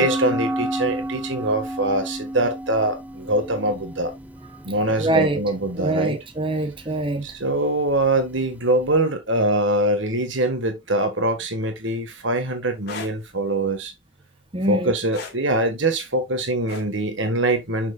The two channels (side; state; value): both; normal; correlation 0.03